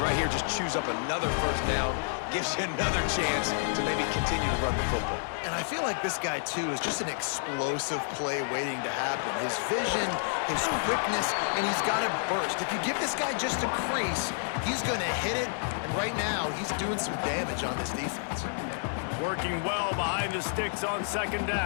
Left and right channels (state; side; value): silent; right; digital silence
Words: right here just choose up another first down, gives you another chance to maybe continue to run the football. And I feel like this guy, too, is just an explosive play waiting to happen. His vision, his quickness, and he's got a burst. If you give this guy just a crease, he's going to hit it, and right now he's doing some damage on this defense. Working well behind the sticks on 2nd